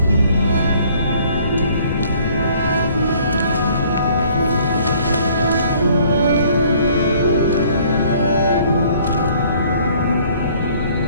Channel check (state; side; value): inverted; both; correlation -0.58